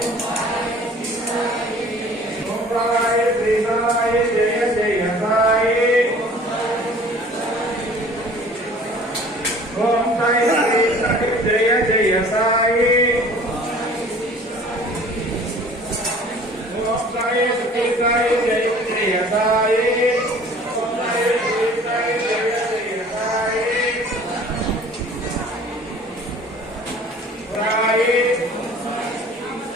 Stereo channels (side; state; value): both; normal; correlation 0.48